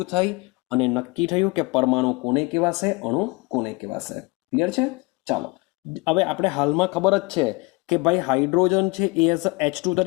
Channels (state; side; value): quieter; right; 25.9 dB